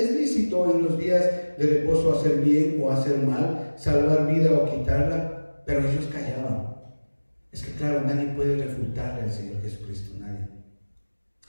lícito en los días de reposo hacer bien o hacer mal, salvar vida o quitarla? Pero ellos callaban. Es que claro, nadie puede refutarle al Señor Jesucristo, nadie.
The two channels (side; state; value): both; inverted; correlation -1.00